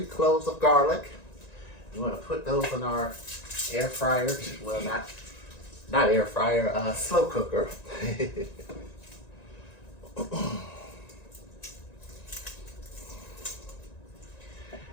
cloves of garlic. We wanna put those in our air fryer. Well, not air fryer, slow cooker.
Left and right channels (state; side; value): late; right; 1.9 ms